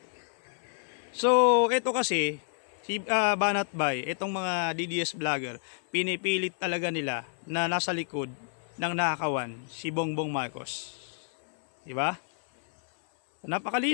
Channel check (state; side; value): silent; right; 58 dB below the other